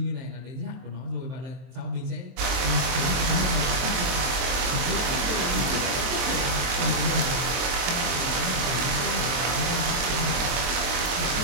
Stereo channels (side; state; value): left; late; 23 ms